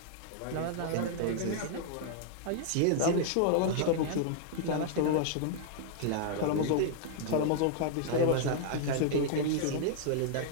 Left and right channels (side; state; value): both; different; correlation -0.01